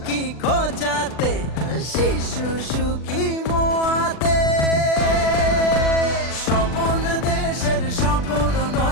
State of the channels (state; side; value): late; right; 40 ms